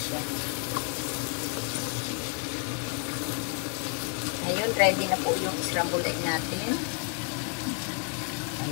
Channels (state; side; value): quieter; right; 38.6 dB